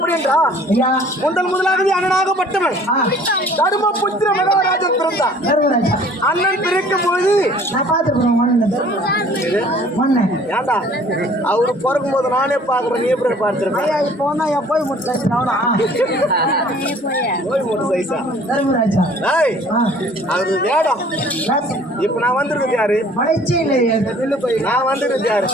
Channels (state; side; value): normal; both; correlation 0.53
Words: என்றா ஐயா முதலாகவே அண்ணனாகப்பட்டவன் தர்மபுத்திர மகாராஜன் பிறந்தார். தர்மராஜா அண்ணன் பிறக்கும் போது நான் பார்த்துருக்கேன் மண்ணை ஏண்டா அவரு பிறக்கும் போது நானே பாக்குறேன், நீ எப்படி பார்த்திருக்கேன்? இப்போ தான் என் போய் முடிச்சு போய் மூணு சைஸா தர்மராஜா அது வேடம். இப்ப நான் வந்திருக்கிறது யாரு? மலைச்சி இல்லையா நான் வந்திருக்கிறது யாரு?